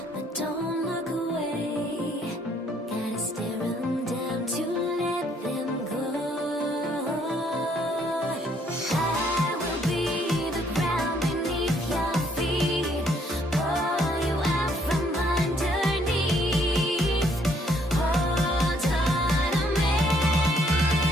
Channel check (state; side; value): normal; both; correlation 0.66